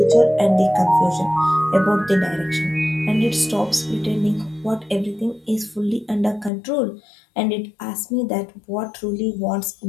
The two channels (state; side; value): drops out; right; at 6.5 s